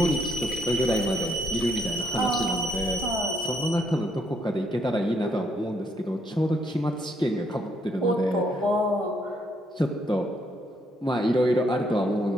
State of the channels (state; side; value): normal; both; correlation 0.72